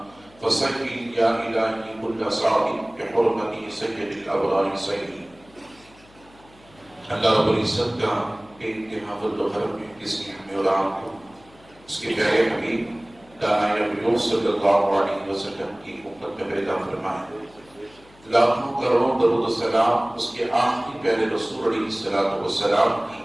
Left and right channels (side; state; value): left; noise; hum, 27 dB below the sound